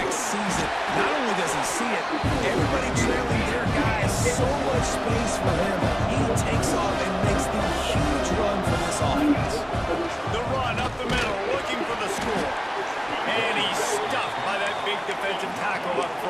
sees it. Not only does he see it, everybody trailing their guy has so much space for him. He takes off and makes the huge run for this offense. The run up the middle, looking for the score. And he's stuffed by that big defensive tackle up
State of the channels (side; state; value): both; identical; correlation 1.00